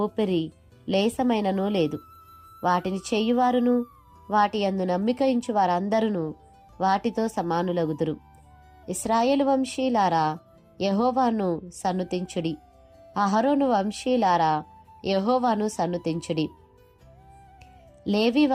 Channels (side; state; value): both; identical; correlation 1.00